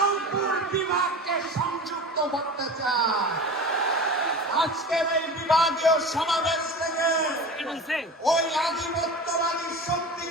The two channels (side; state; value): both; normal; correlation 0.33